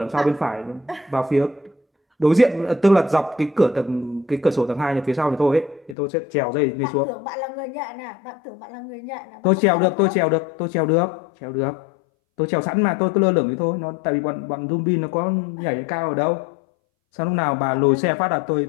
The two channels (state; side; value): drops out; right; at 6.0 s